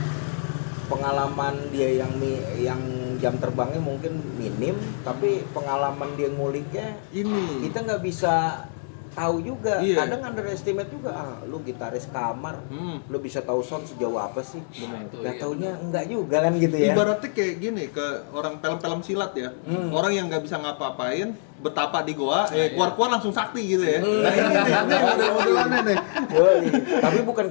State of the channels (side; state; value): right; silent; digital silence